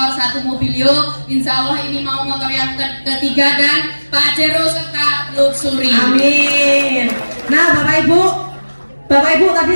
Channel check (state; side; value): inverted; both; correlation -1.00